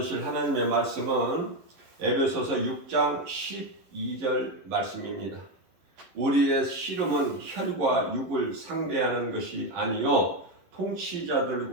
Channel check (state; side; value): late; left; 11 ms